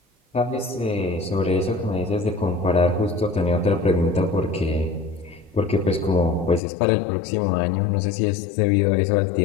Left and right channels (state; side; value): drops out; right; at 6.6 s